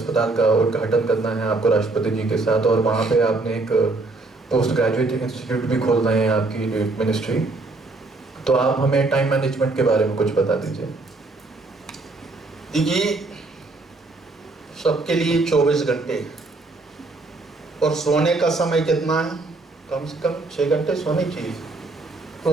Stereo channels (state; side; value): quieter; left; 3.3 dB